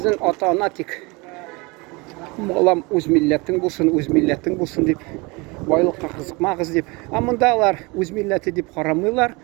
ата-ана тик балам үз милләтең булсын дип, байлыкка кызыкмагыз дип. Ә мондалар үз милләте дип карамыйлар,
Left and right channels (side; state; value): left; quieter; 26.5 dB